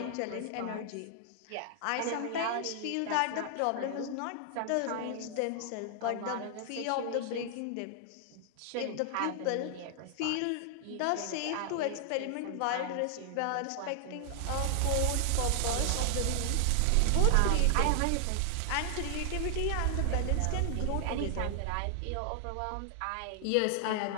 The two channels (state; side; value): different; both; correlation 0.00